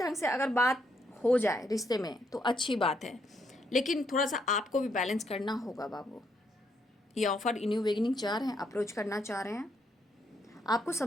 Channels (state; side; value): normal; both; correlation 0.75